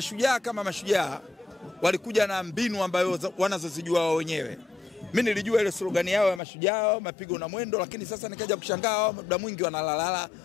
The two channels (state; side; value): drops out; right; at 6.4 s